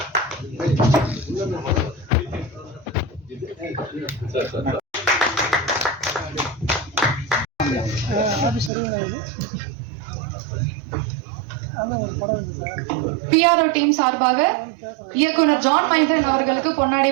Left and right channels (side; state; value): left; drops out; at 8.7 s